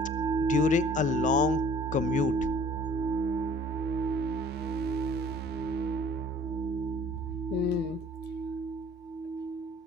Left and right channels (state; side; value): normal; both; correlation 0.52